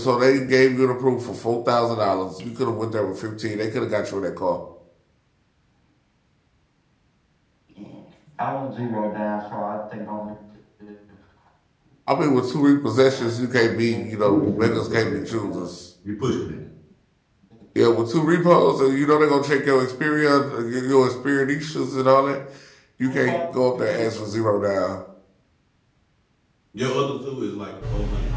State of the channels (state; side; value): identical; both; correlation 1.00